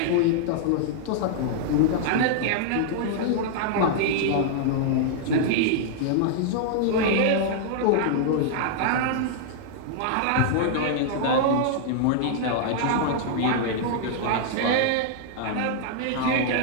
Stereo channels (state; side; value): different; both; correlation -0.01